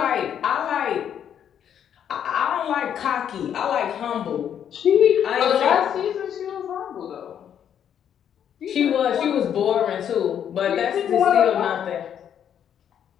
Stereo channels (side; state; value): right; quieter; 9.1 dB